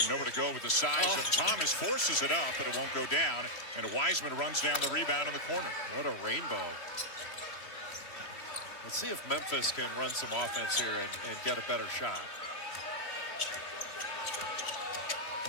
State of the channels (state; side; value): late; right; 3.0 ms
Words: nowhere to go with the size of Thomas, forces it up, but it won't go down. And Wiseman runs down the rebound in the corner. What a rainbow. Let's see if Memphis can run some offense here and get a better shot.